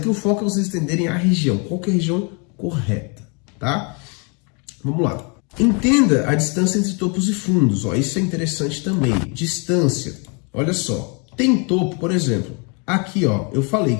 o foco é vocês entenderem a região, qual que é a região correta, tá? Vamos lá. Entenda a distância entre topos e fundos, ó, isso é interessante também. Distância, olha só, tem topo, por exemplo, aqui ó, eu falei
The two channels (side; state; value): right; quieter; 34.5 dB